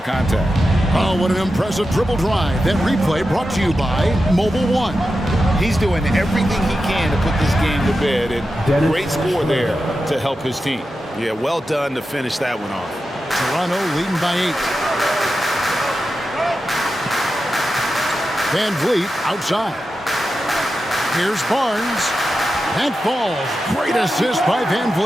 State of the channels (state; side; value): normal; both; correlation 0.91